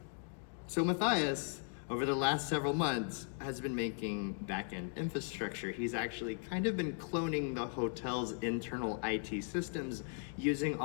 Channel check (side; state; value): right; silent; 53 dB below the other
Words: So Matthias, over the last several months, has been making back-end infrastructure. He's actually kind of been cloning the hotel's internal IT systems, using